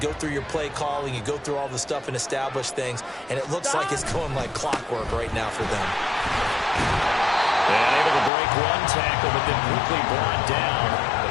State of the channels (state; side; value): drops out; right; at 8.3 s